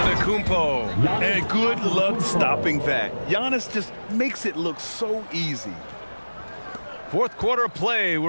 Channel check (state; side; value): inverted; both; correlation -1.00